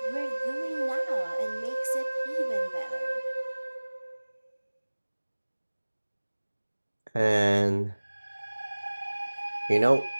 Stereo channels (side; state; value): both; inverted; correlation -1.00